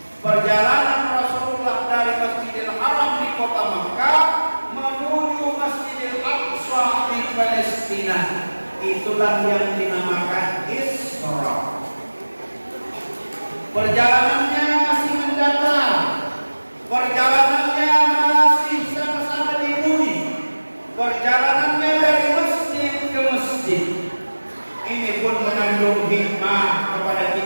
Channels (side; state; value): both; inverted; correlation -1.00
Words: Perjalanan Rasulullah dari Masjidil Haram di kota Makkah menuju Masjidil Aqsa di Palestina. Itulah yang dinamakan Isra. Perjalanannya masih mendatar, perjalanannya masih sama-sama di bumi, perjalanannya dari masjid ke masjid. Ini pun mengandung hikmah kepada